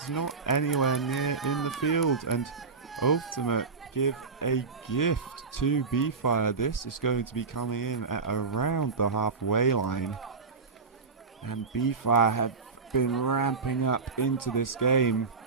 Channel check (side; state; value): left; quieter; 4.8 dB